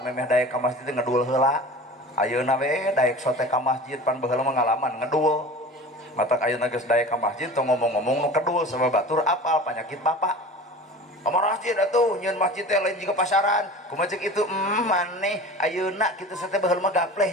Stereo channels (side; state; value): both; normal; correlation 0.37